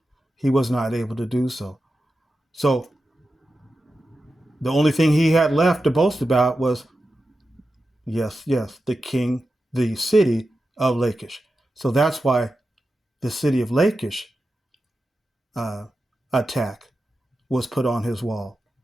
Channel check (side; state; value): both; normal; correlation 0.91